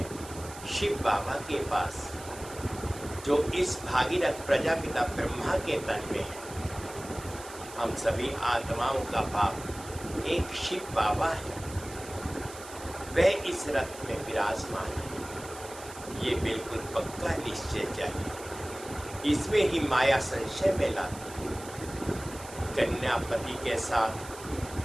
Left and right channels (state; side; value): noise; right; hiss, 15 dB below the sound